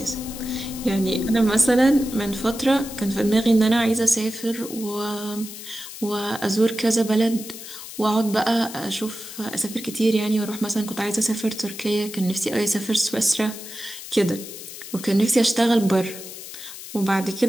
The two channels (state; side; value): noise; left; hiss, 12 dB below the sound